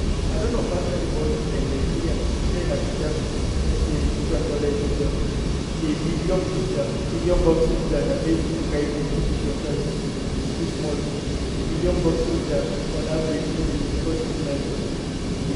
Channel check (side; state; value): both; identical; correlation 1.00